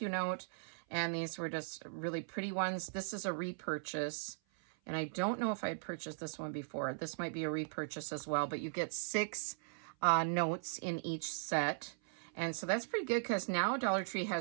note. And these were just really pretty ones. This is a repurchase. And I don't know if I had purchased this one before. This might be a repurchase as well, but you get 6 notes in each set. And so that's pretty good because now Dollar Tree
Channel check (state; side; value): silent; left; 52 dB below the other